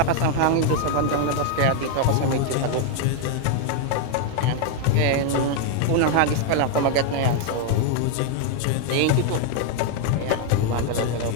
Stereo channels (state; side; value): different; both; correlation 0.00